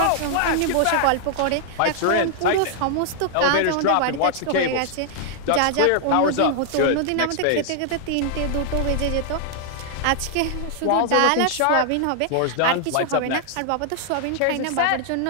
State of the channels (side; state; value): both; different; correlation 0.00